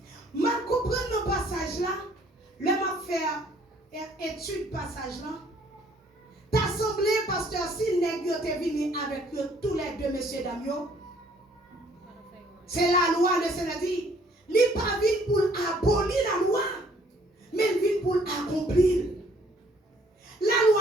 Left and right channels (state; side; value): normal; both; correlation 0.61